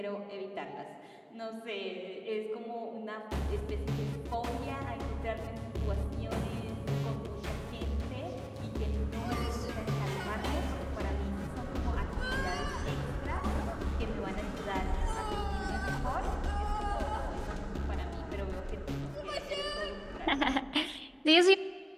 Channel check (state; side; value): identical; both; correlation 1.00